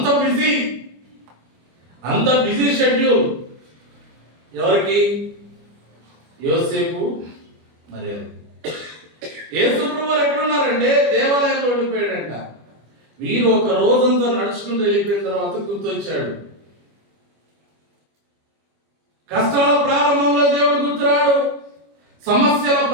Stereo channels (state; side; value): late; left; 25 ms